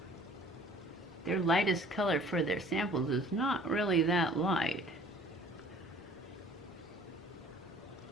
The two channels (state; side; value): normal; both; correlation 0.51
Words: Their lightest color for their samples is not really that light.